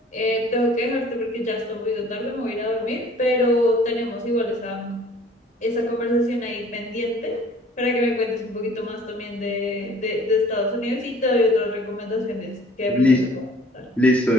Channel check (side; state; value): both; normal; correlation 0.52